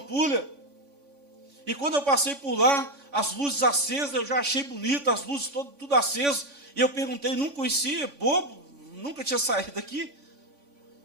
E quando eu passei por lá, as luzes acesas, eu já achei bonito, as luzes tudo acesas. E eu perguntei, não conhecia, bobo, nunca tinha saído daqui.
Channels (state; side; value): late; left; 3.5 ms